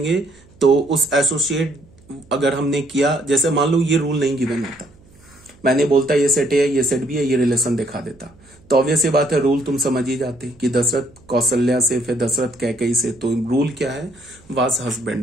तो उस एसोसिएट अगर हमने किया, जैसे मान लो ये रूल नहीं गिवन होता, मैंने बोलता ये सेट ए है, ये सेट बी है, ये रिलेशन दिखा देता, तो ऑब्वियस बात है रूल तुम समझ ही जाते कि दशरथ कौशल्या से, फिर दशरथ कैकेयी से। तो रूल क्या है, वाज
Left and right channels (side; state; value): right; noise; hum, 28 dB below the sound